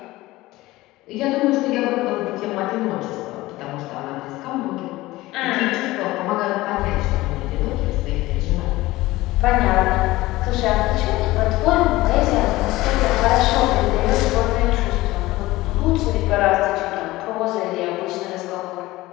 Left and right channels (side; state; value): right; quieter; 18.5 dB